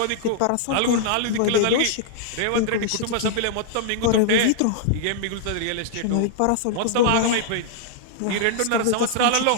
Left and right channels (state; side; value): different; both; correlation -0.01